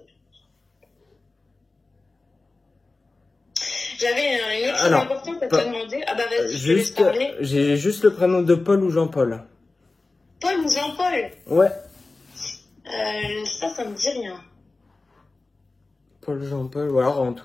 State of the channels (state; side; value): quieter; right; 3.4 dB